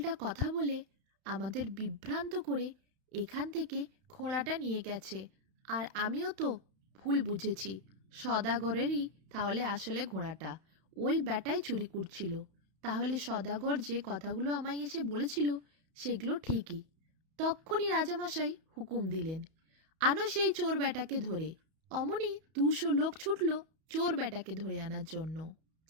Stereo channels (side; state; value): left; late; 31 ms